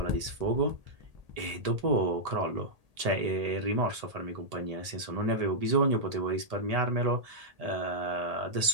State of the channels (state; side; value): late; left; 1.8 ms